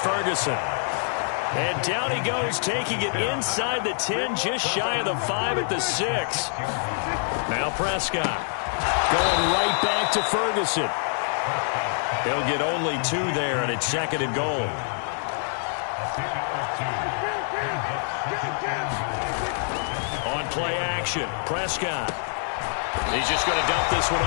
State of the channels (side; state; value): right; silent; digital silence